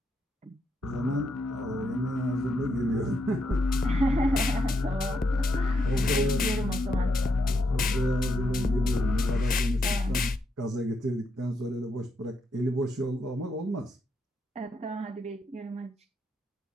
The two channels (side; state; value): both; normal; correlation 0.80